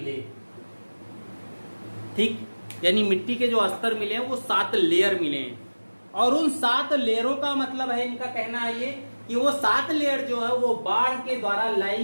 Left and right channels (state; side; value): inverted; both; correlation -1.00